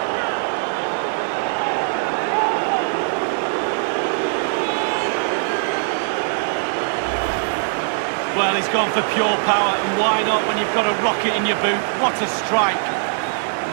Well, he's gone for pure power, and why not when you've got a rocket in your boot? What a strike.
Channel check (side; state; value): left; silent; digital silence